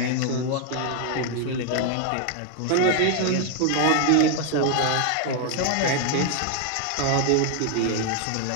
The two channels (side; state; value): both; different; correlation 0.00